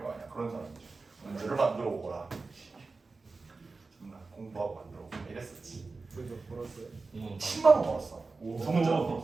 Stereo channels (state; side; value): quieter; left; 3.9 dB